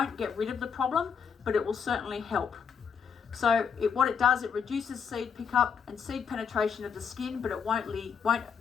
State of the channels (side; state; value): right; quieter; 6.6 dB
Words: get rid of the problem, but it will certainly help. So what it does, it reduces seed pickup and seed penetration of the skin, but it